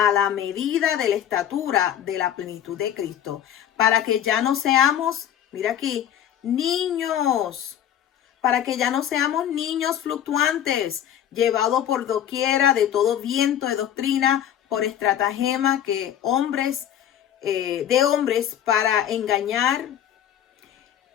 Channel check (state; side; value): quieter; right; 10.4 dB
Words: la medida de la estatura de la plenitud de Cristo, para que ya no seamos, mira aquí, niños, para que ya no seamos niños fluctuantes, llevados por doquiera de todo viento de doctrina, por estratagema de hombres para engañar,